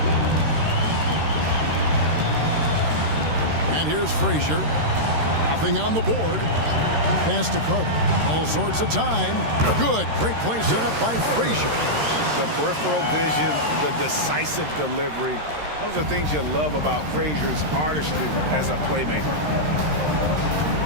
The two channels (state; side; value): late; left; 13 ms